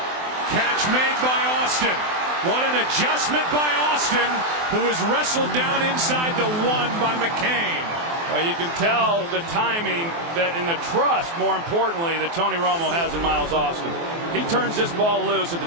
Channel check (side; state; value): left; late; 24 ms